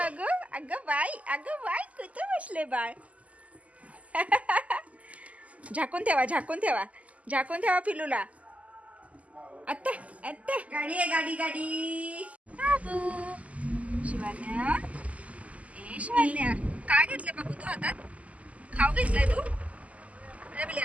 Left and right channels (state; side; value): late; left; 0.069 ms